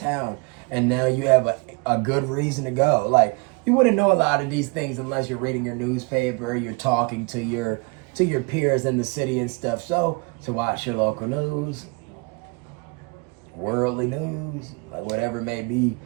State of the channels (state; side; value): quieter; left; 30.1 dB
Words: and now you have a good reason to go. Like, you wouldn't know a lot of these things unless you're reading your newspaper, you're talking to your peers in the city and stuff. So watch your local news, worldly news, like whatever it may be,